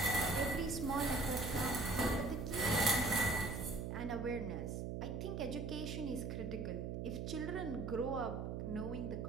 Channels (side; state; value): right; noise; hum, 3 dB below the sound